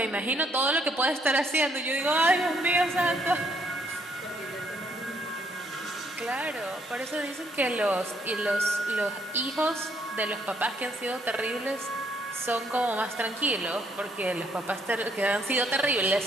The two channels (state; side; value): normal; both; correlation 0.70